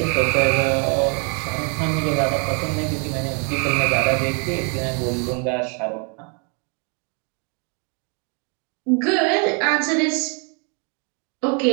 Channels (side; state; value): left; quieter; 37.5 dB